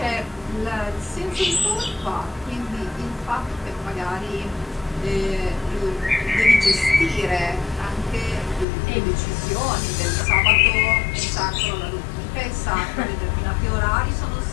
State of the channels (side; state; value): right; drops out; at 8.7 s